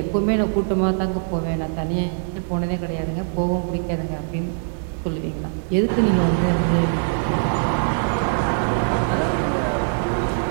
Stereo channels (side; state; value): left; silent; digital silence